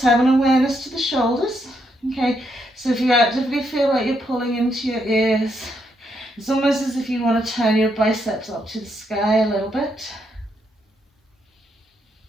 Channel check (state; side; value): normal; both; correlation 0.78